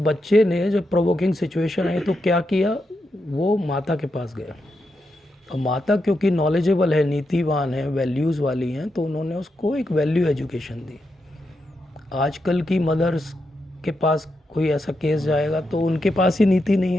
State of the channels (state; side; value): normal; both; correlation 0.85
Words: ने जब प्रोवोकिंग सिचुएशन आई तो क्या किया, वो माता के पास गया। और माता क्योंकि नॉलेजेबल है, नीतिवान है, वैल्यूज़ वाली हैं, तो उन्होंने उसको एक वैल्यू एजुकेशन दी। आजकल की मदर्स के पास कोई ऐसा केस जाएगा तो उनके पास ही नीति नहीं